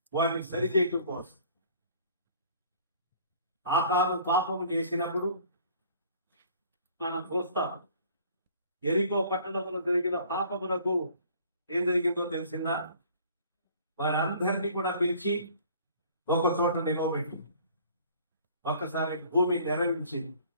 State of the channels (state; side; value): inverted; both; correlation -0.53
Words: వారిని సరిచేయటం కోసం. ఆకారం పాపం చేసినప్పుడు మనం చూస్తాం, ఎరికో పట్టణంలో జరిగిన పాపమునకు ఏం జరిగిందో తెలిసిందా? వారందరినీ కూడా పిలిచి ఒక చోట నిలవబెట్టి ఒక్కసారి భూమి నెరవించి